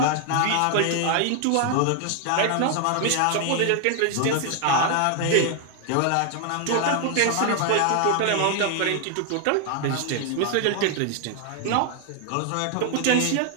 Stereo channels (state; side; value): different; both; correlation 0.00